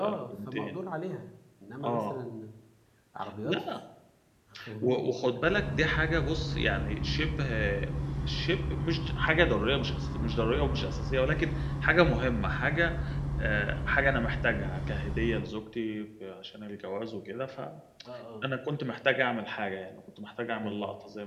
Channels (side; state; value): both; identical; correlation 1.00